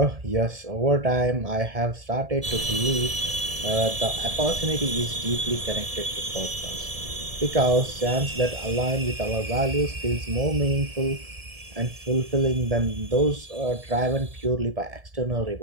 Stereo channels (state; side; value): late; left; 1.7 ms